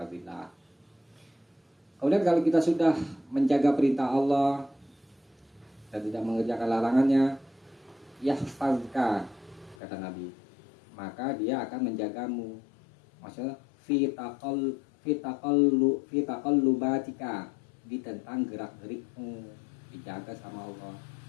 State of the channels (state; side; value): drops out; right; at 9.8 s